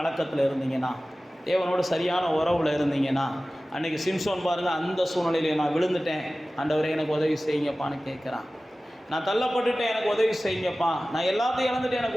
இருந்தீங்கன்னா, தேவனோடு சரியான உறவில் இருந்தீங்கன்னா, அன்றைக்கி சிம்சோன் பாருங்கள், அந்த சூழ்நிலையிலே நான் விழுந்துட்டேன், ஆண்டவரே எனக்கு உதவி செய்யுங்கப்பான்னு கேட்குறான். நான் தள்ளப்பட்டுட்டேன், எனக்கு உதவி செய்யுங்கப்பா, நான் எல்லாத்தையும் இழந்துட்டேன்,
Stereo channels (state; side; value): normal; both; correlation 0.97